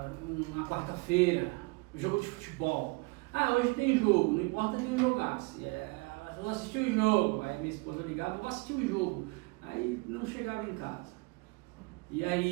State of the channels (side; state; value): left; quieter; 27.3 dB